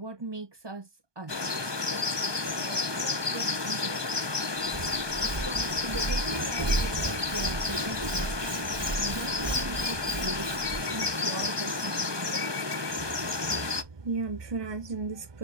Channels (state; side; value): late; left; 1.2 ms